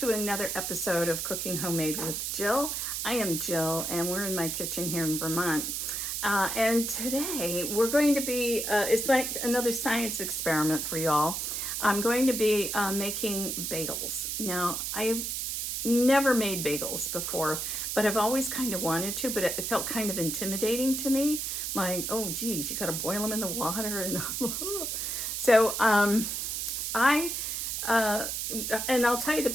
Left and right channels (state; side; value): noise; right; hiss, 2 dB below the sound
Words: another episode of Cooking Homemade with Jill. I am Jill and we're in my kitchen here in Vermont. And today we're going to be, it's like another science experiment for y'all. I'm going to be making bagels. Now, I've never made bagels before, but I've always kind of wanted to, but it felt kind of intimidating to me. Like, oh geez, you gotta boil them in the water. And so and I'll tell you the